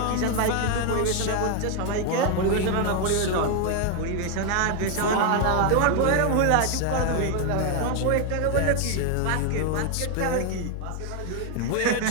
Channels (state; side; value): different; both; correlation 0.01